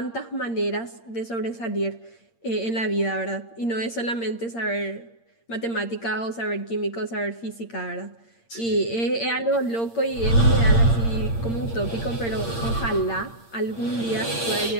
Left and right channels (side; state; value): right; late; 8.7 ms